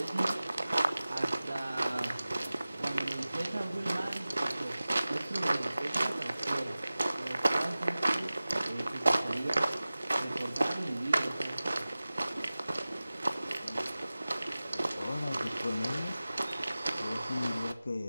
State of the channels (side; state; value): both; inverted; correlation -0.97